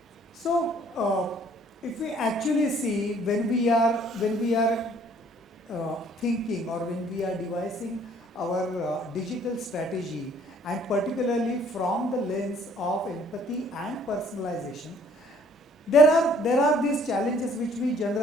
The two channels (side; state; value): both; normal; correlation 0.60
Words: So, if we actually see, when we are thinking, or when we are devising our digital strategy, and particularly from the lens of empathy and personalization, there are these challenges which we